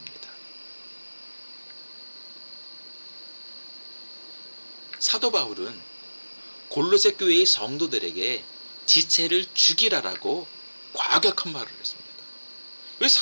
사도 바울은 골로새 교회의 성도들에게 지체를 죽이라라고 과격한 말을 했습니다. 왜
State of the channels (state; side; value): inverted; both; correlation -1.00